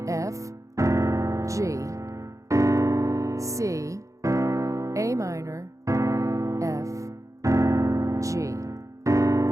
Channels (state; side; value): late; left; 0.15 ms